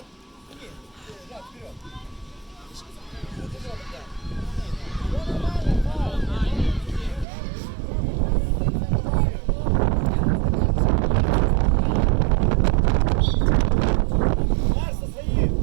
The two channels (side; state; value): left; drops out; at 7.2 s